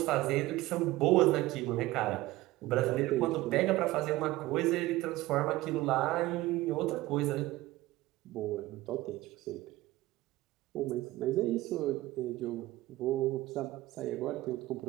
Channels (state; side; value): quieter; left; 17.9 dB